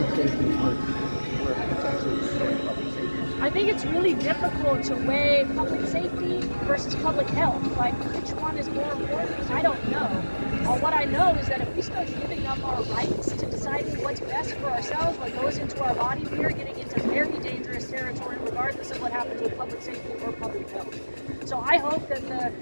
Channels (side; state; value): both; inverted; correlation -1.00